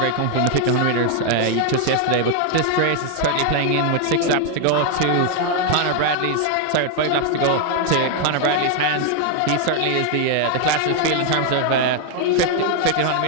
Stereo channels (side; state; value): both; different; correlation 0.00